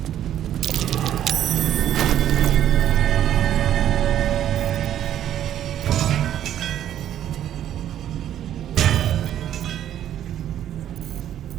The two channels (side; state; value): left; quieter; 11.1 dB